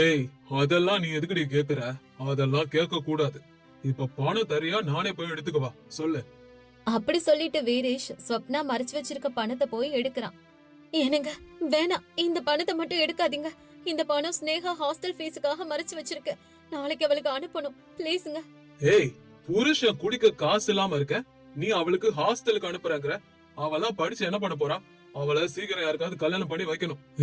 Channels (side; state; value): both; identical; correlation 1.00